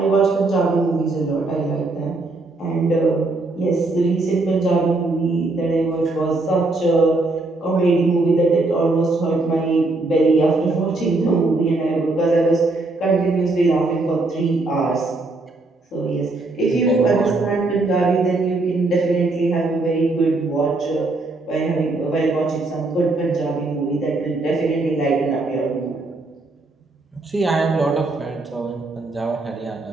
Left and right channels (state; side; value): quieter; left; 3.2 dB